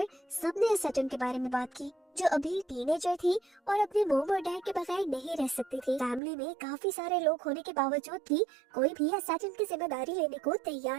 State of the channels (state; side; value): drops out; left; at 6.2 s